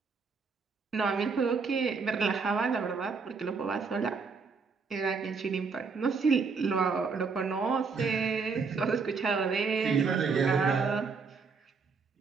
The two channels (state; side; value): quieter; left; 5.0 dB